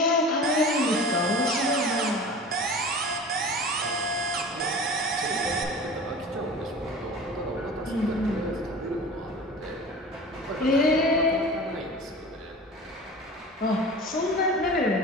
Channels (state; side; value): normal; both; correlation 0.37